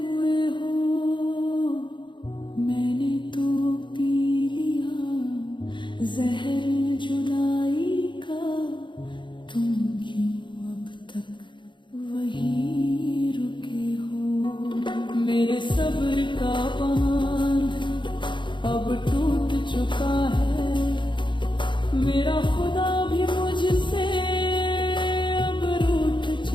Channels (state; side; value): late; right; 0.23 ms